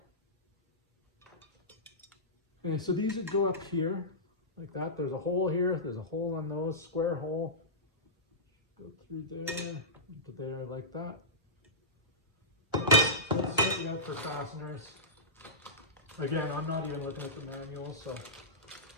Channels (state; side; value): normal; both; correlation -0.17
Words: way. Okay, so these would go up here like that. There's a hole here. There's a hole on those, square hole. Go through there, into there like that. So let's set you up for fasteners. Again, I'm not even looking at the manual, so